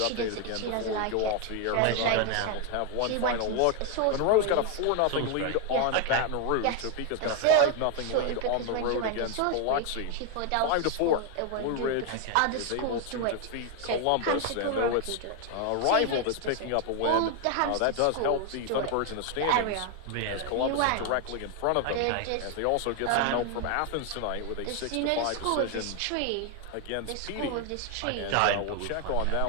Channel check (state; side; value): different; both; correlation 0.01